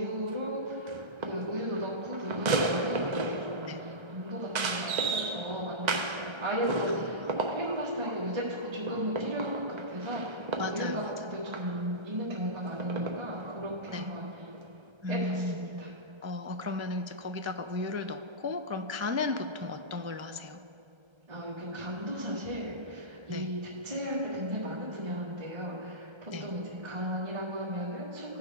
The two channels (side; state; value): left; late; 1.3 ms